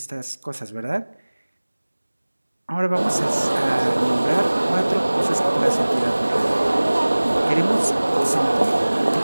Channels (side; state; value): both; inverted; correlation -1.00